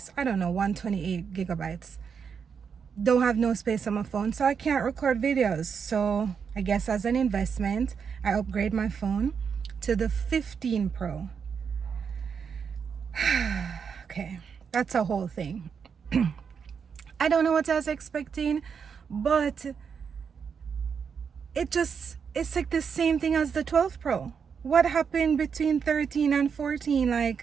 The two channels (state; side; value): quieter; left; 6.5 dB